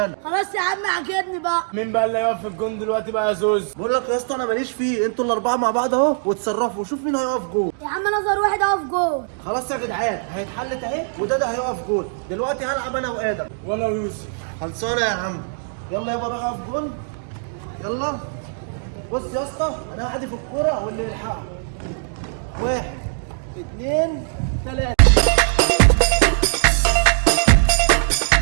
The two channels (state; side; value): silent; left; digital silence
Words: خلاص يا عم عجبني بقى. مين بقى اللي هيقف في الجون دلوقتي بقى يا زوز؟ بقول لك يا اسطى انا ماليش فيه، انتوا الاربعه مع بعض اهو وتصرفوا وشوف مين هيقف جول. يا عم نظر واحد اقف جول. خلاص يا جدعان هيتحلت اهي، وده هيقف جول. دلوقتي هلعب انا وادم. وانا ويوسف. خلصانه يا عم. يلا يابا روح اقف جول. يلا بص يا اسطى، انا هحدف الكوره واللي يلحقها. 1 2 3.